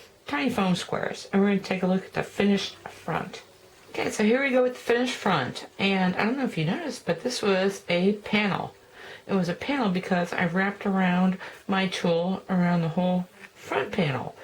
tiny foam squares. And we're going to take a look at the finished front. Okay, so here we go with the finished front. And I don't know if you noticed, but this was a panel. It was a panel because I wrapped around my tool around the whole front panel.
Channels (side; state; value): both; identical; correlation 1.00